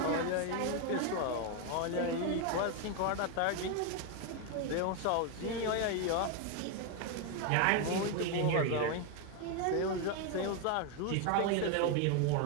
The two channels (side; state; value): both; different; correlation 0.01